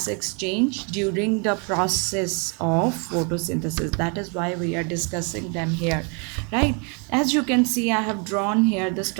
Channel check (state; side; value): quieter; left; 35.9 dB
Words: exchange during the process of photosynthesis. That is why we are discussing them here, right? As you can see, I have drawn here the